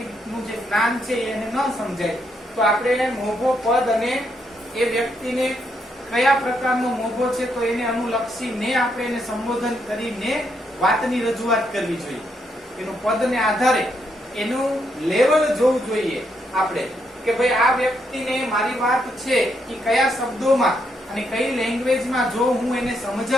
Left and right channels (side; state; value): both; normal; correlation 0.77